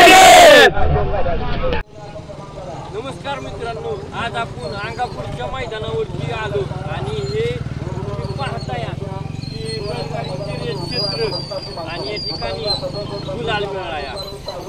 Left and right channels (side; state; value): both; identical; correlation 1.00